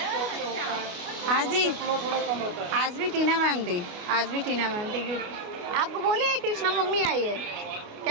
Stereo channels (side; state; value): left; late; 28 ms